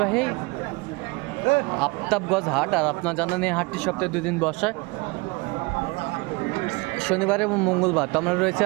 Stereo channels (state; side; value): quieter; left; 25.8 dB